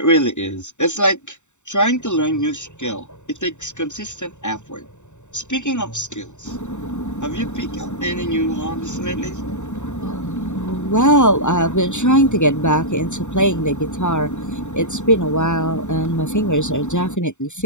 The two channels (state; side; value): late; right; 0.84 ms